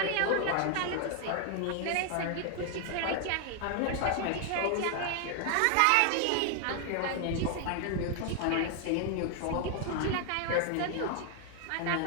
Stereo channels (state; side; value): different; both; correlation 0.00